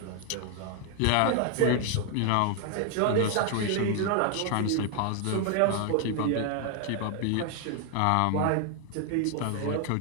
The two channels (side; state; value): both; different; correlation 0.00